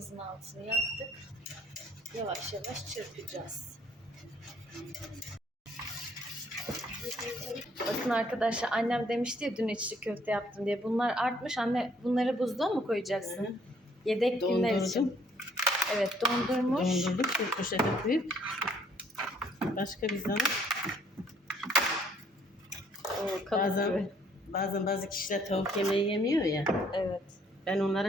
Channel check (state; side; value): normal; both; correlation 0.64